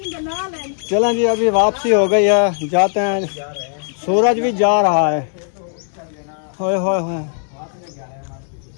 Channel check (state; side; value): silent; right; 67 dB below the other